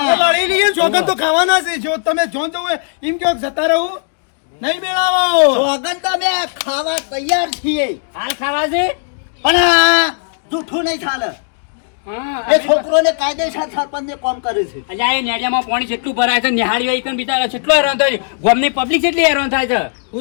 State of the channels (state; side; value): silent; right; 69 dB below the other